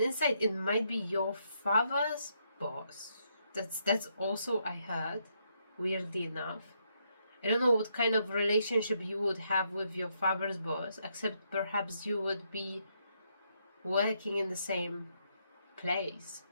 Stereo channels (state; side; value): inverted; both; correlation -0.76